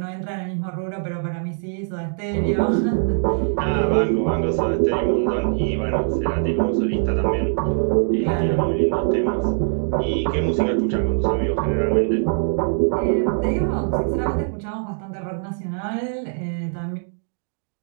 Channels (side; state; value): left; silent; digital silence